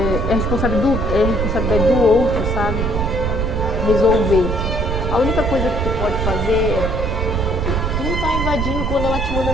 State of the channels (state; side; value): noise; right; rumble, 2 dB below the sound